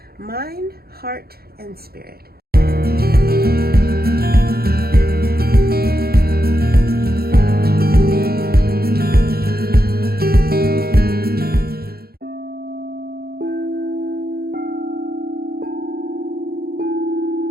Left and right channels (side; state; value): left; late; 0.45 ms